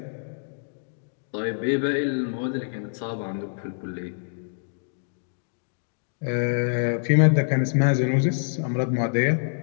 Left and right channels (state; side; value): silent; right; digital silence